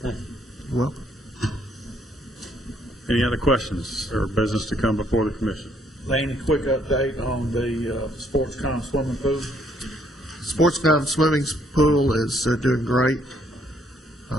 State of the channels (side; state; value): both; normal; correlation 0.68